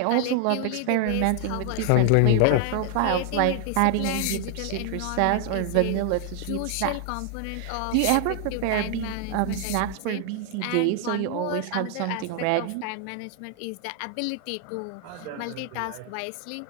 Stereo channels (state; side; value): different; both; correlation 0.00